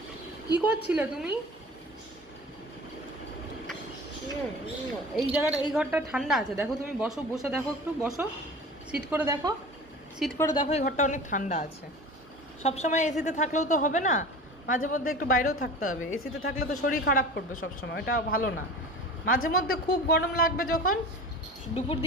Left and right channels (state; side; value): normal; both; correlation 0.37